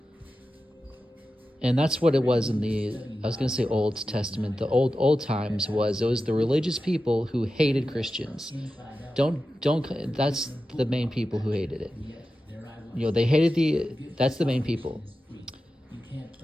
And that's what it was in the, I was going to say Old Testament, the old times was, it was the religious people who hated Christians. That's the main people who hated it. You know, they hated that's the main people.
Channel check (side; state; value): both; normal; correlation 0.92